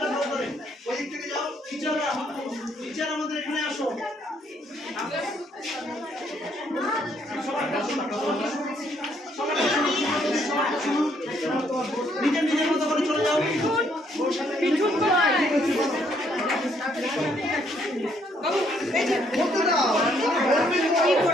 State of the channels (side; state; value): both; normal; correlation 0.69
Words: নাও করে ওই দিক থেকে যাও। টিচাররা, টিচার আমাদের এখানে আসো। নিজের নিজের মতো করে চলে যাও।